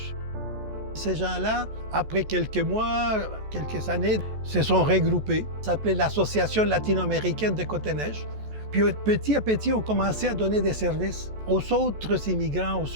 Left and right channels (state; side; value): late; left; 14 ms